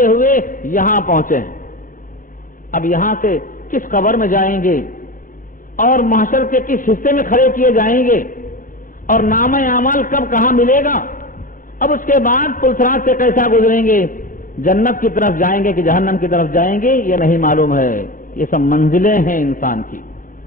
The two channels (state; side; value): late; right; 0.39 ms